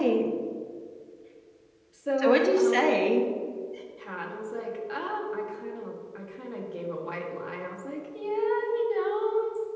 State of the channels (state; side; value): identical; both; correlation 1.00